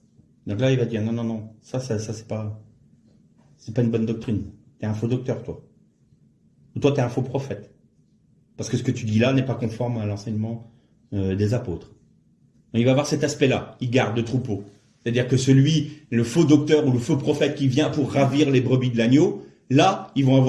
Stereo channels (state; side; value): identical; both; correlation 1.00